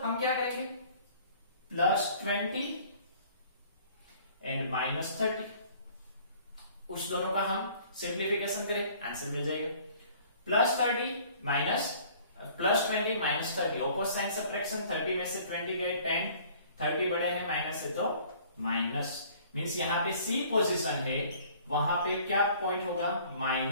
हम क्या करेंगे? +20 एंड -30, उस दोनों का हम सिंप्लीफिकेशन करें, आंसर मिल जाएगा। +30 +20 -30, ऑपोजिट साइन सब्ट्रैक्शन, 30 में से 20 गए 10, 30 बड़े हैं माइनस है तो माइनस, मीन्स यहां पे सी पोजीशन है, वहां पे क्या पॉइंट होगा?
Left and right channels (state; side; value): inverted; both; correlation -0.53